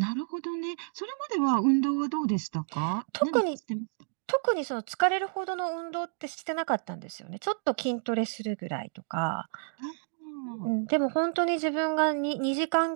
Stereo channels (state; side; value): silent; left; digital silence